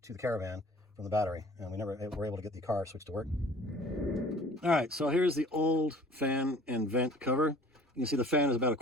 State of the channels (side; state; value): both; normal; correlation 0.50